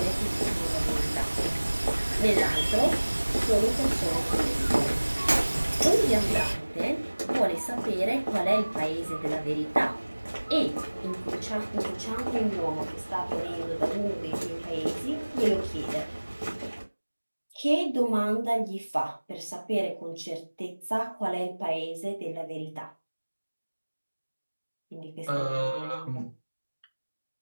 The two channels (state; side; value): inverted; both; correlation -1.00